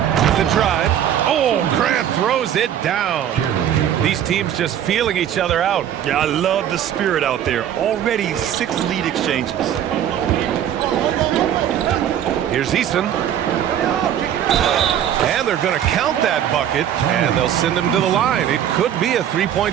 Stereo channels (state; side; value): quieter; left; 10.2 dB